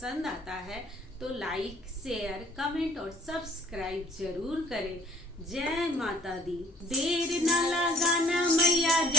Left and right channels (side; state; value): both; normal; correlation 0.56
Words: आता है तो लाइक, शेयर, कमेंट और सब्सक्राइब जरूर करें। जय माता दी। देर न लगाना मैया